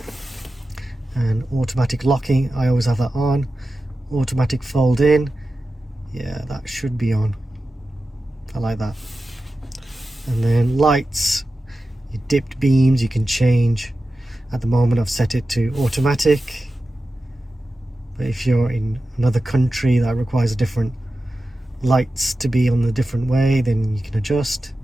And automatic locking, I always have that on. Automatic fold in, yeah, that should be on. I like that. And then lights, your dipped beams you can change. At the moment I've set it to automatic, but if you're in another country that requires a different lights to be on a different way, then you can adjust.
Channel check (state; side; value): normal; both; correlation 0.93